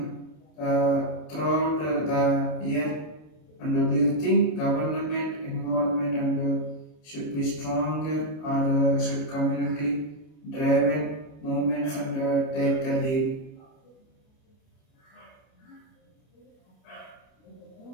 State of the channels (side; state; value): right; late; 32 ms